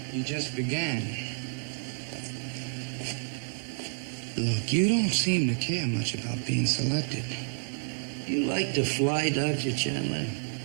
You just began. Look, you don't seem to care much about being selected. You like to fly, Dr. Chandler?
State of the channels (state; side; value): silent; left; digital silence